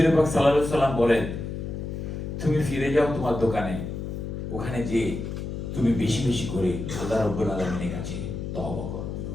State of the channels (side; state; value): left; noise; hum, 5 dB below the sound